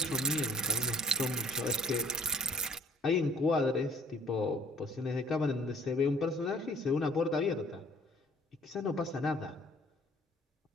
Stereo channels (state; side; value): normal; both; correlation 0.54